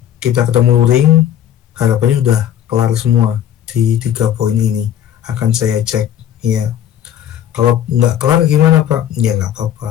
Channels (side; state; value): right; quieter; 10.6 dB